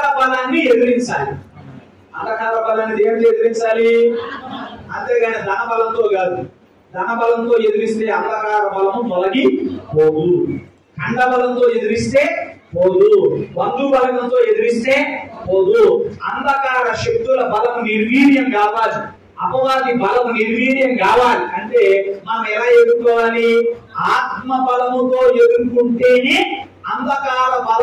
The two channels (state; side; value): identical; both; correlation 1.00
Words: బలాన్ని ఎదిరించాలి. అంధకార బలాన్ని దేవుడు ఎదిరించాలి, అంతేగాని ధన బలంతో కాదు. ధన బలంతో ఎదిరిస్తే అంధకార బలము తొలగి పోదు. ఖండ బలంతో ఎదిరిస్తే పోదు. బంధు బలంతో ఎదిరిస్తే పోదు. అంధకార శక్తుల బలము నిర్వీర్యం కావాలి. అపవాది బలము నిర్వీర్యం కావాలి అంటే మనం ఎలా ఎదుర్కోవాలి? ఆత్మ బలముతో ఎదుర్కొంటేనే అంధకార